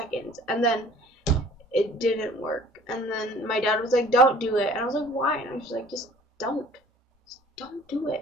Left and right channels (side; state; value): both; normal; correlation 0.51